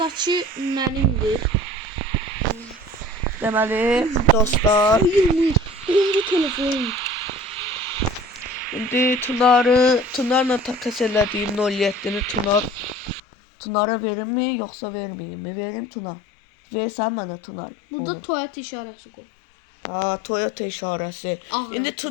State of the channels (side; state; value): right; drops out; at 13.2 s